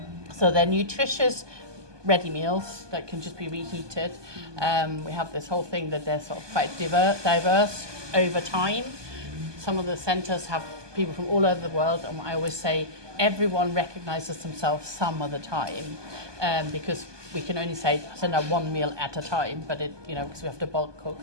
So they're nutritious, ready meals that can just be reheated. We have this whole thing that they're sort of quite diverse over time. Some of the centres have people from all over the world, and I always say everyone recognises themselves some of the time, because we can only send out one meal at a time, but because we have to bulk cook.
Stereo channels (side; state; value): left; late; 1.2 ms